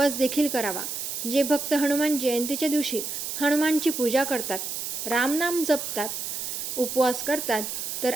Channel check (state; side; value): noise; right; hiss, 4 dB below the sound